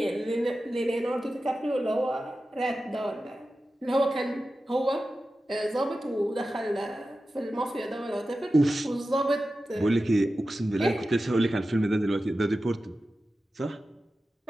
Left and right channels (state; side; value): normal; both; correlation 0.93